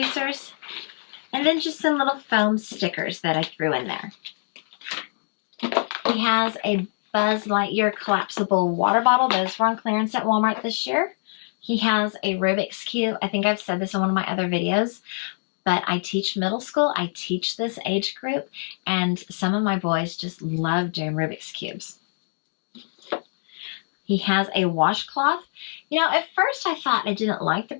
and then just some little foam stickers that I threw in there. He has a Buzz Lightyear collapsible water bottle. Those were on clearance at Walmart this year. He has a Rubik's Cube. I think I've said this in one of my other videos, but I teach middle school. I teach this age group, and some of my boys just love doing Rubik's Cubes. He has a washcloth. You know, at first I thought I didn't like the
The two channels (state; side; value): silent; right; digital silence